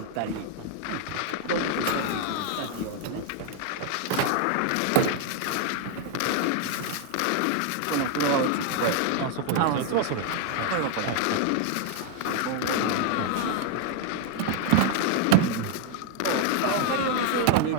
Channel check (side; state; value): both; different; correlation 0.00